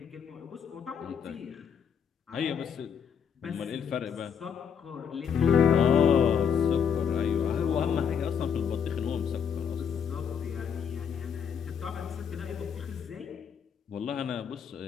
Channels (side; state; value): right; quieter; 7.4 dB